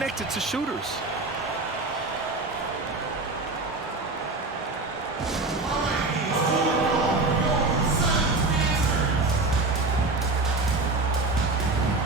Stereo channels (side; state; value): left; quieter; 3.4 dB